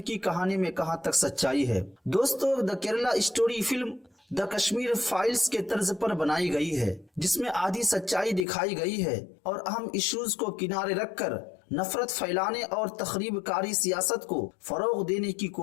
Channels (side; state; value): right; drops out; at 8.5 s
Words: की कहानी में कहां तक सच्चाई है। दोस्तों the Kerala story film the Kashmir files के तर्ज पर बनाई गई है, जिसमें आधी सच्चाई दिखाई गई है और अहम इश्यूज को किनारे रखकर नफरत फैलाने और तखरीबकारी सियासत को फरोग देने की